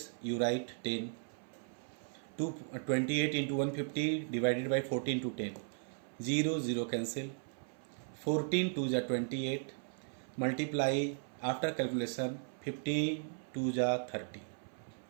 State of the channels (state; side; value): silent; left; 53 dB below the other